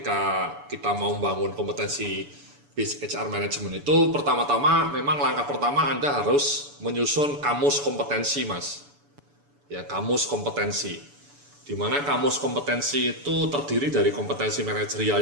kita mau membangun kompetensi BIS HR Management itu pertama-tama memang langkah pertama Anda harus menyusun kamus kompetensi, Mas. Ya, kamus kompetensi. Di mana kamus kompetensi itu terdiri dari kompetensi manajerial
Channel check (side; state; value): left; late; 7.0 ms